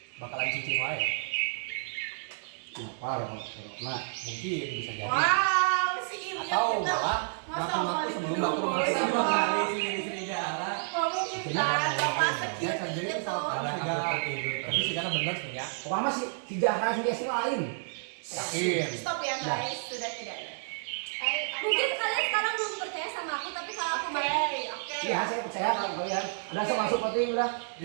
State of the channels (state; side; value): silent; left; digital silence